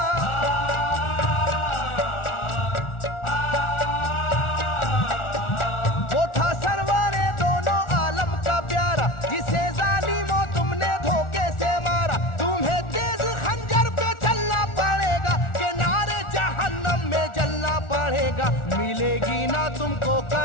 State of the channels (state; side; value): late; right; 1.4 ms